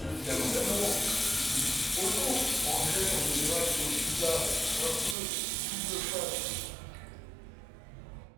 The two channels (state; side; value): drops out; left; at 5.2 s